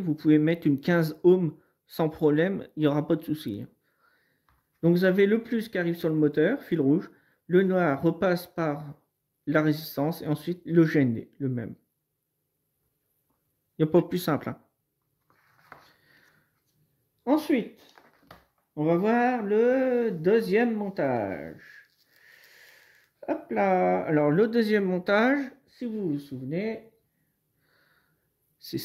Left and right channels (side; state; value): both; identical; correlation 1.00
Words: pouvez mettre une 15 ohms sans problème, il n'y aura pas de souci. Donc, vous avez le plus qui arrive sur le moteur, fil rouge. Le noir repasse par la résistance et ensuite le GND, le même. Il n'y a pas plus simple. Hein. Ensuite, on va voir le deuxième montage. Hop là. Alors, le deuxième montage, si vous vous souvenez, c'est